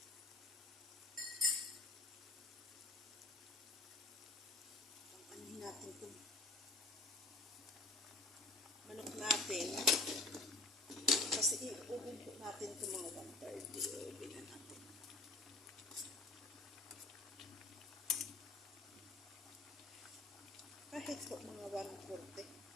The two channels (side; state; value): right; quieter; 3.1 dB